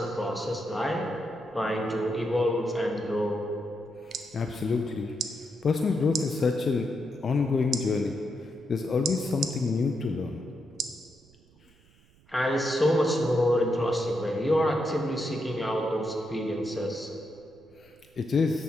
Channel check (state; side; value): noise; right; rumble, 29 dB below the sound